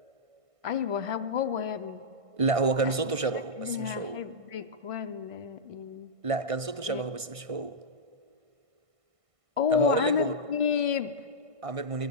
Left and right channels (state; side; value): late; left; 1.5 ms